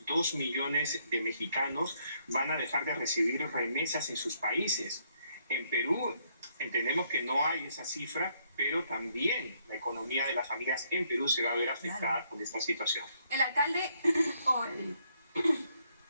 2 millones de mexicanos van a dejar de recibir remesas en sus países. En Perú entendemos que no hay esa cifra, pero también la economía de las familias en Perú se va a ver afectada por esta situación. El alcalde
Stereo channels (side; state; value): both; inverted; correlation -0.71